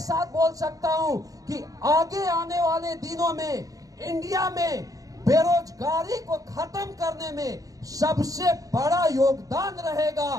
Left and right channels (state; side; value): late; left; 0.17 ms